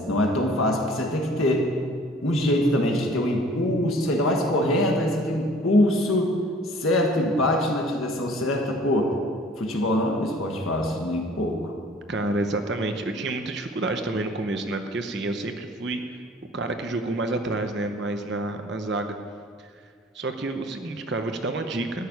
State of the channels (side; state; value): both; normal; correlation 0.52